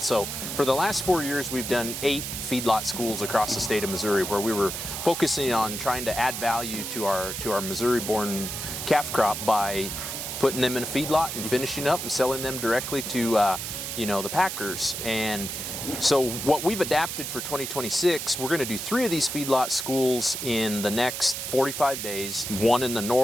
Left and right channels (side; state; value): right; noise; hiss, 5 dB below the sound